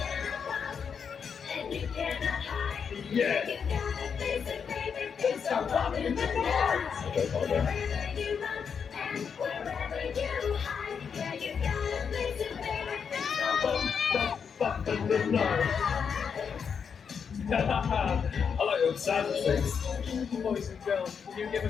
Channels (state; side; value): quieter; right; 6.6 dB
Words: And you cannot hide. Yeah. You gotta face it, baby. It's a walk in the night. Wherever you run and wherever you hide. Yeah, you gotta face it, baby. It's a Bump in the night. I like your sound effects. Boys and girls, can you give